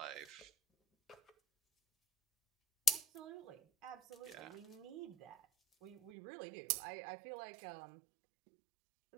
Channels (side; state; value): left; drops out; at 6.1 s